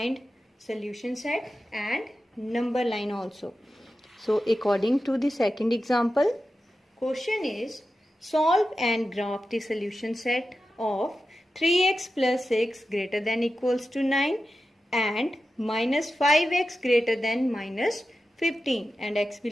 solution set and number line also. So according to the second example, question is solve and graph the solution set of 3x plus 6 greater than equals to 9 and minus 5x greater than minus 15 and x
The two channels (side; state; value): both; normal; correlation 0.92